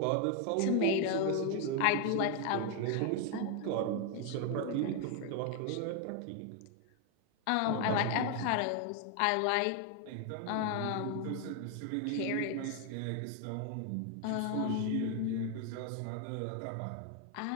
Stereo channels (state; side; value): different; both; correlation 0.01